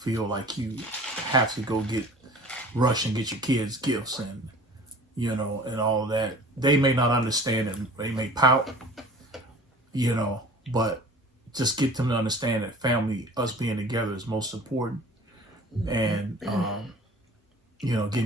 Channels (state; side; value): normal; both; correlation 0.44